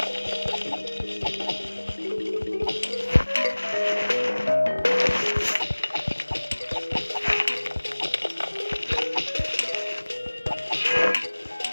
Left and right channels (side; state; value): both; inverted; correlation -1.00